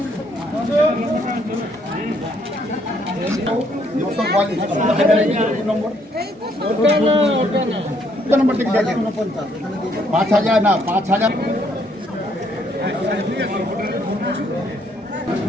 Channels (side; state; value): both; normal; correlation 0.69